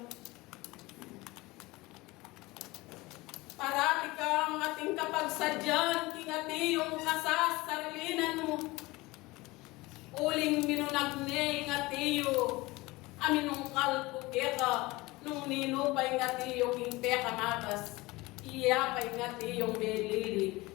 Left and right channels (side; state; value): right; quieter; 21.5 dB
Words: Parati kang ating kapagsadyan, kingati yung kasasarilinan mo. Uling minunagne, ingati yung aminong kalpo keka, nung ninupay ngati yung king peka matas, iya pay ngati yung melili,